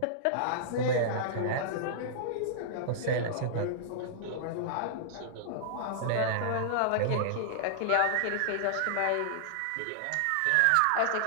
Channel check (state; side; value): different; both; correlation -0.01